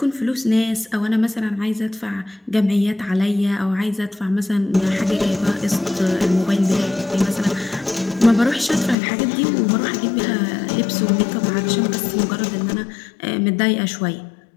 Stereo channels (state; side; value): drops out; right; at 9.0 s